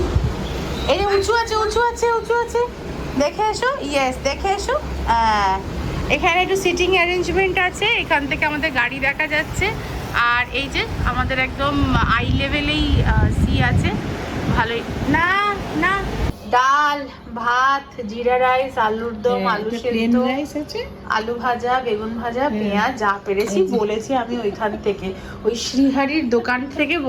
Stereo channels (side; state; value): both; identical; correlation 1.00